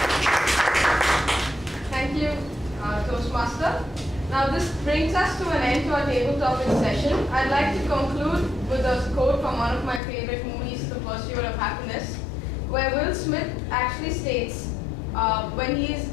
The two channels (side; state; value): right; drops out; at 10.0 s